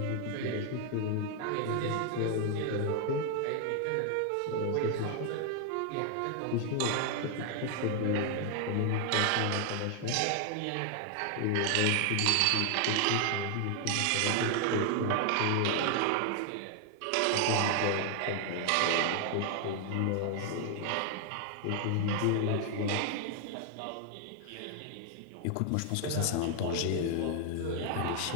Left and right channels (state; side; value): different; both; correlation 0.00